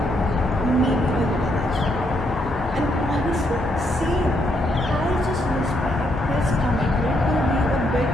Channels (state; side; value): normal; both; correlation 0.75